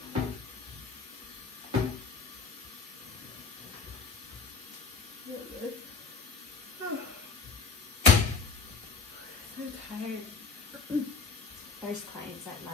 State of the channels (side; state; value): right; quieter; 4.6 dB